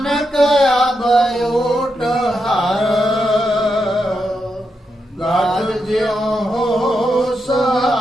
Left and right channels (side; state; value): both; normal; correlation 0.84